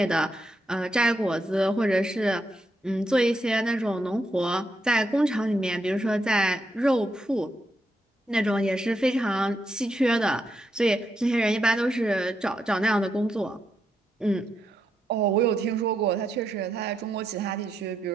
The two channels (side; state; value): both; normal; correlation 0.81